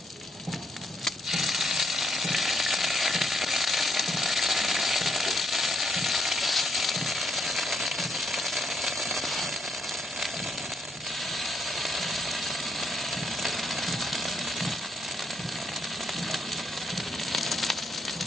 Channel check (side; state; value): both; normal; correlation 0.75